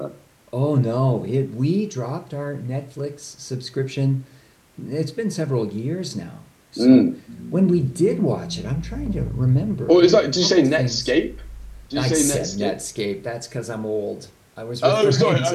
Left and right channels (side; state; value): both; identical; correlation 1.00